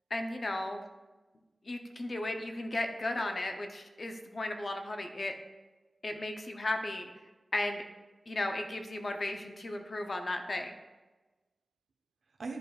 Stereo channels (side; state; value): both; normal; correlation 0.95